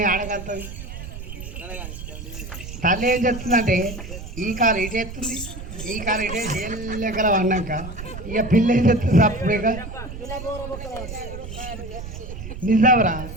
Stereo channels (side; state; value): right; noise; rumble, 10 dB below the sound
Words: ఆడగలుగుతుంది. తల్లి ఏం చెప్తుందంటే ఈ కాలు ఇటు ఎత్తుంది ఈ కాలు ఇటే చేయలేకల పడినాక ఇక పిల్ల ఏం చెప్తుంది అప్పుడేగా నిజావరా